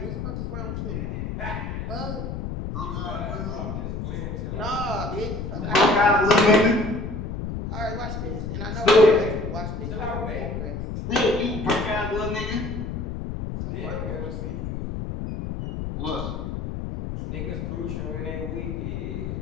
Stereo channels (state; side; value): noise; left; rumble, 5 dB below the sound